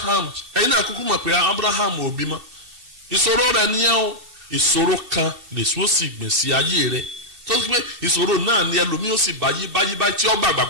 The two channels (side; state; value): left; late; 2.7 ms